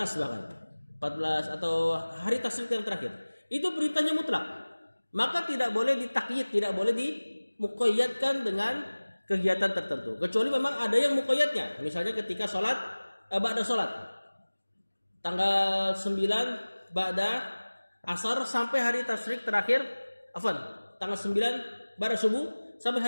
bahkan. 14 atau hari tasyrik yang terakhir. Itu perintahnya mutlak. Maka tidak boleh ditakyid, tidak boleh dimuqayyadkan dengan kegiatan tertentu. Kecuali memang ada yang muqayyadnya. Misalnya ketika sholat, ba'da sholat. Tanggal 9 ba'da asar sampai hari tasyrik terakhir, tanggal 9 ba'da subuh sampai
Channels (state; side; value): inverted; both; correlation -1.00